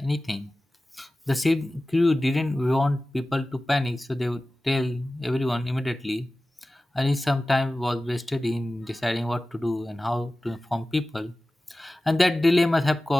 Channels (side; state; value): both; normal; correlation 0.96